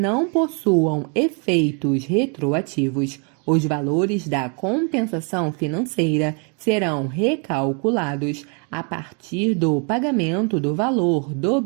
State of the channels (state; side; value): quieter; left; 36.9 dB